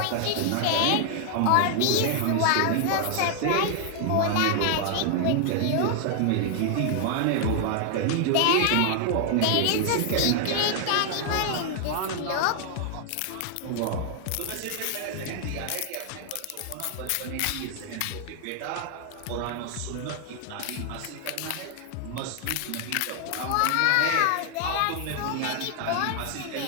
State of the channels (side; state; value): both; different; correlation 0.00